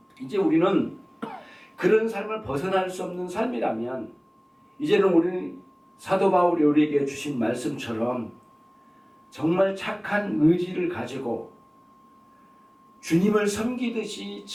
이제 우리는 그런 삶을 벗어날 수 없는 삶이라면 이제는 우리는 사도 바울이 우리에게 주신 말씀처럼 정말 착한 의지를 가지고 주님을 섬기듯이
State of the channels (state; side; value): identical; both; correlation 1.00